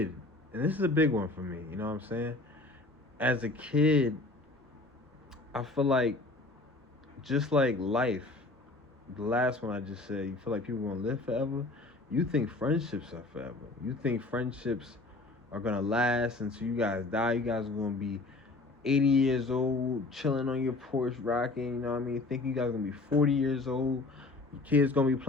and this is a big one for me, you know what I'm saying? As a kid, I feel like just like life, the last one I just said, you feel like people gonna live forever. You think friendships are forever. You think friendships are gonna last until you guys die. You guys are gonna be 80 years old, chilling on your porch, rocking, you know what I mean? Think you guys gonna be 40 years old. Your kids gonna be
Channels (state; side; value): quieter; right; 3.2 dB